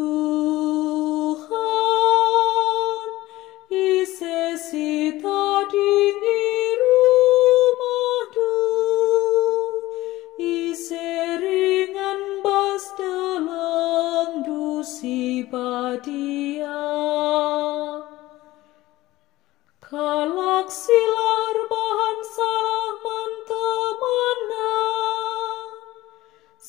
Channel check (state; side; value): quieter; right; 17.5 dB